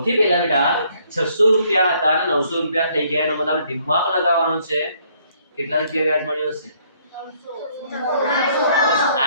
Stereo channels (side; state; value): both; inverted; correlation -0.66